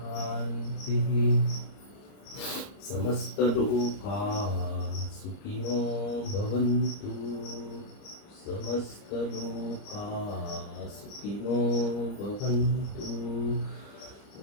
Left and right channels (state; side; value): late; right; 30 ms